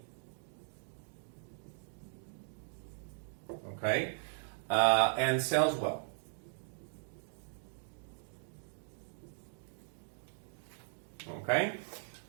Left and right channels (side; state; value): left; silent; digital silence